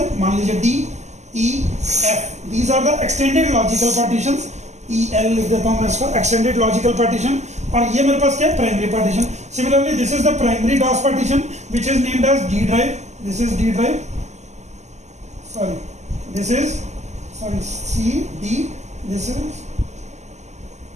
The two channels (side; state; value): left; late; 0.33 ms